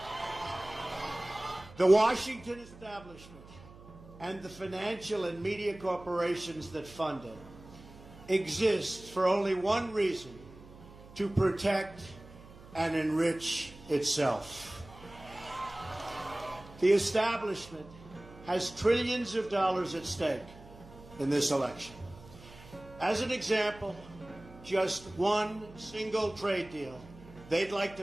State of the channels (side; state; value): right; noise; hum, 19 dB below the sound